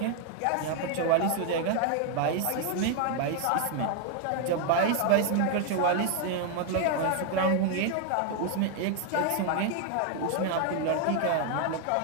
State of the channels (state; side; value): different; both; correlation 0.00